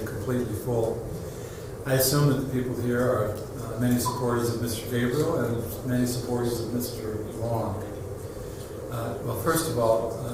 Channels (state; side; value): identical; both; correlation 1.00